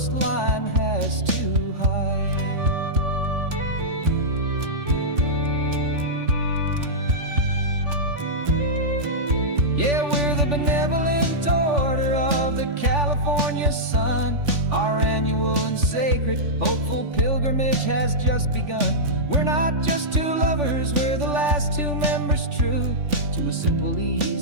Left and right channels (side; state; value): left; late; 3.4 ms